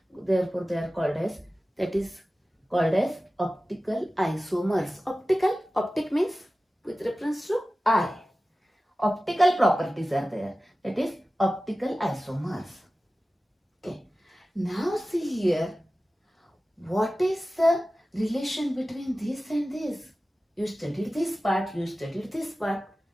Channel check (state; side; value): normal; both; correlation 0.96